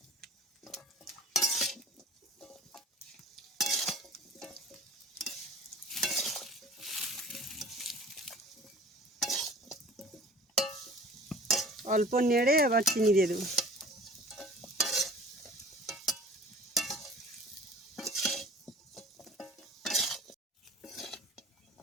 অল্প নেড়ে এবার চিনি দিয়ে দেবো।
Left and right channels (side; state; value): both; normal; correlation 0.45